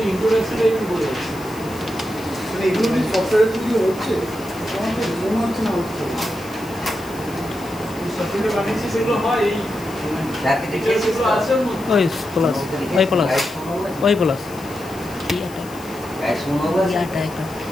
ইন্ট্রোডাকশনটা একটু বলে দিচ্ছি। মানে এগুলো কি সফটওয়্যারের থ্রু দিয়ে হচ্ছে আমার তো মনে হচ্ছে না হচ্ছে সফটওয়্যার বানিয়েছি সেগুলো হয় এই সার্টিফিকেট যেগুলো আছে ওর মধ্যে। ওই প্লাস ওই প্লাস ওই প্লাস গাইড শুনো বলে ইয়াটা একটা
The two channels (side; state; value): left; noise; hiss, 19 dB below the sound